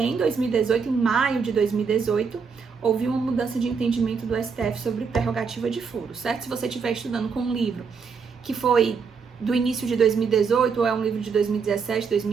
2018, em maio de 2018, houve uma mudança de entendimento do STF sobre prerrogativa de foro, certo? Se você estiver estudando com um livro que foi do início de 2018 ou é um livro de 2017,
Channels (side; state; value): left; quieter; 5.7 dB